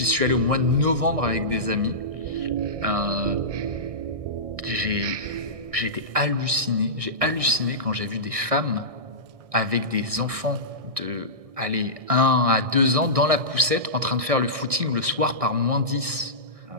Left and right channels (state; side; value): late; left; 1.6 ms